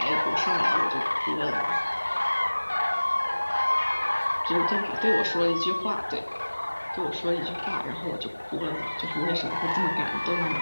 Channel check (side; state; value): both; inverted; correlation -1.00